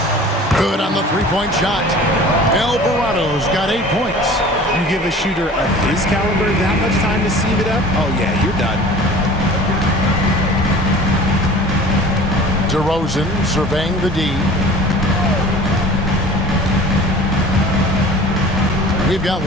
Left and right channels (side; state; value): both; normal; correlation 0.43